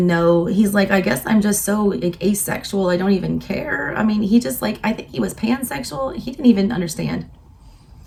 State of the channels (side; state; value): both; identical; correlation 1.00